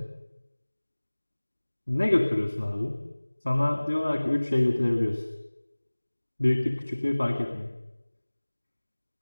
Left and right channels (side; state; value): both; inverted; correlation -1.00